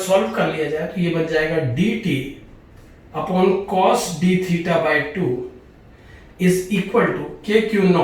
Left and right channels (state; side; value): identical; both; correlation 1.00